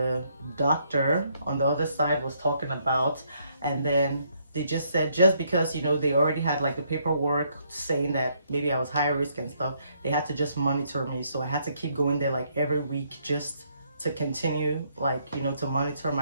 doctor on the other side was talking about. And then they just said, just because, you know, they already had like the paperwork saying that maybe I was high risk and stuff, they had to just monitor me. So I had to keep going there like every week just to continue, like, you know, to monitor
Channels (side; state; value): both; inverted; correlation -0.71